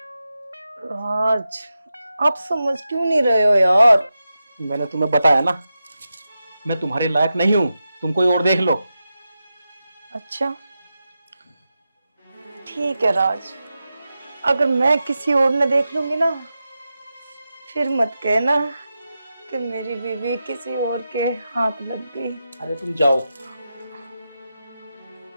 राज, आप समझ क्यों नहीं रहे हो यार? मैंने तुम्हें बताया ना, मैं तुम्हारे लायक नहीं हूँ। तुम कोई और देख लो। अच्छा ठीक है राज, अगर मैं किसी और ने देख लूंगी ना, फिर मत कहना कि मेरी बीवी किसी और के हाथ लग गई। अरे तुम जाओ।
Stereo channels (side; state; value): both; inverted; correlation -0.90